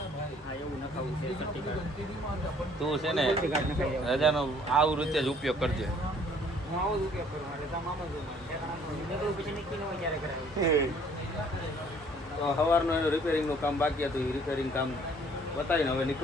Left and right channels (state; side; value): normal; both; correlation 0.59